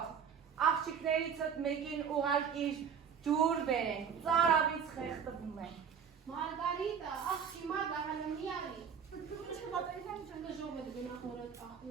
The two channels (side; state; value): left; quieter; 7.2 dB